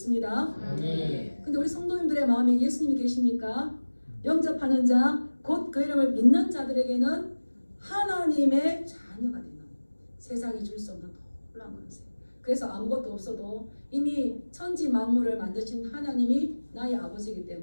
근데 우리 성도님들의 마음에 예수님이 계십니까? 영접하는 자, 곧 그 이름을 믿는 자들에게는 하나님의 자녀가 되는 세상이 줄 수 없는 놀라운 권세. 그래서 아무것도 없어도 이미 천지 만물을 만드신 하나님이 나의 아버지이기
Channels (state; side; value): inverted; both; correlation -1.00